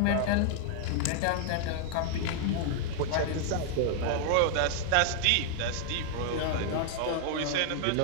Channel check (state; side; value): different; both; correlation 0.00